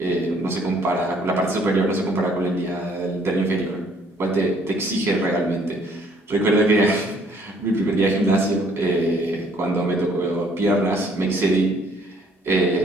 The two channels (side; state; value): both; normal; correlation 0.63